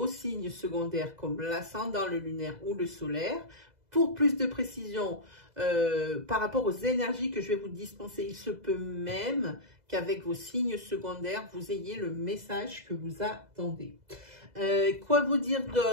signes secondaires comme l'ascendant, le lunaire ou le solaire. Pour plus de précision par rapport aux énergies que je vais vous dispenser, il se peut même qu'avec vos signes secondaires, vous ayez le message que vous attendez. Quoi vous dire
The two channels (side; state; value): left; late; 2.0 ms